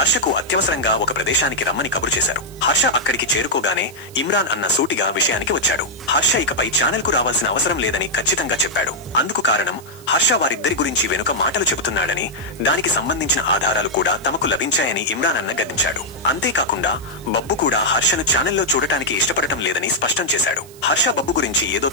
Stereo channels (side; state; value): right; noise; hiss, 22 dB below the sound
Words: అత్యవసరంగా ఒక ప్రదేశానికి రమ్మని కబురు చేశారు. హర్ష అక్కడికి చేరుకోగానే ఇమ్రాన్ అన్న సూటిగా విషయానికి వచ్చాడు. హర్ష ఇకపై ఛానల్ కు రావాల్సిన అవసరం లేదని ఖచ్చితంగా చెప్పాడు. అందుకు కారణం హర్ష వారిద్దరి గురించి వెనుక మాటలు చెబుతున్నాడని, దానికి సంబంధించిన ఆధారాలు కూడా తమకు లభించాయని ఇమ్రాన్ అన్న గద్దించాడు. అంతేకాకుండా బబ్బు కూడా హర్షను ఛానల్లో చూడటానికి ఇష్టపడటం లేదని స్పష్టం చేశాడు. హర్ష బబ్బు గురించి ఏదో